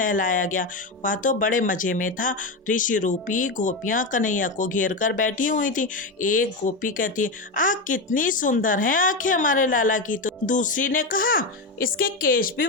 गया। वह तो बड़े मजे में था। ऋषि रूपी गोपियां कन्हैया को घेर कर बैठी हुई थी। एक गोपी कहती है, आह कितनी सुंदर है आंखें हमारे लाला की। तो दूसरी ने कहा, इसके केश भी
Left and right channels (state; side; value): quieter; right; 3.2 dB